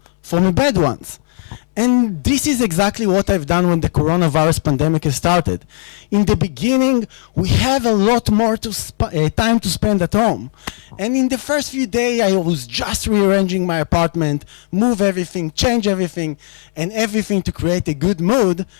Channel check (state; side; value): silent; right; 63 dB below the other